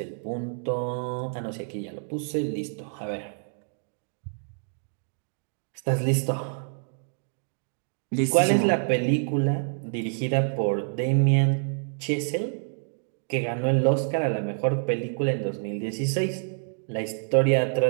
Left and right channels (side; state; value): left; silent; digital silence